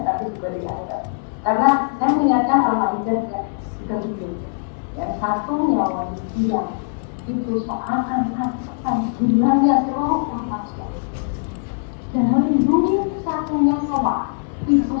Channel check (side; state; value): right; silent; 65 dB below the other